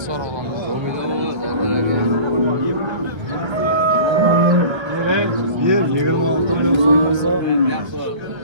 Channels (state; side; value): late; left; 1.3 ms